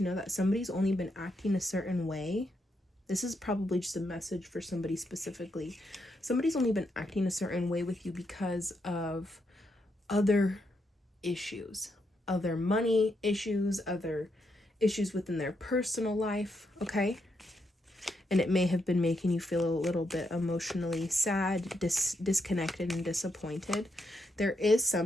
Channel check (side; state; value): both; normal; correlation 0.80